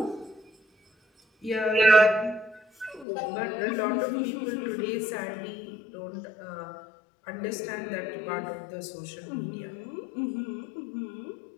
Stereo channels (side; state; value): right; drops out; at 3.1 s